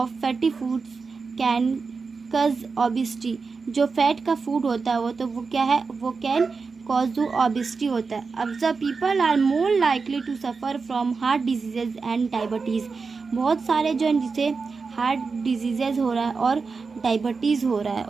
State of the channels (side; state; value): left; quieter; 4.7 dB